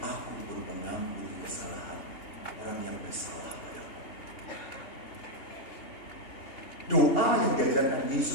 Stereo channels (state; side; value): late; right; 2.8 ms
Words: pun mengampuni kesalahan orang yang bersalah padaku. Doa yang diajarkan